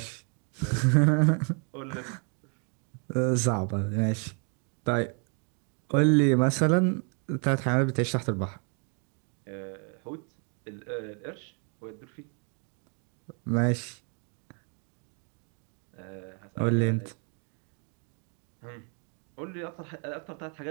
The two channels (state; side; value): quieter; left; 39.5 dB